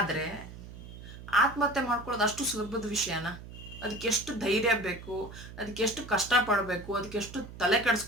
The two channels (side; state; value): right; noise; hum, 14 dB below the sound